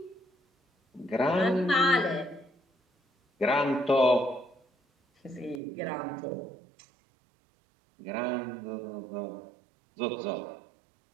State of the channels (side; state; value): left; drops out; at 5.6 s